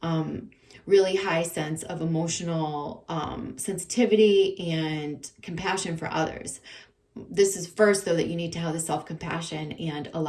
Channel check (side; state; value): both; identical; correlation 1.00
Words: really high sense of emotional sensitivity and compassion for others. This is first, though, that you need to have the self-compassion and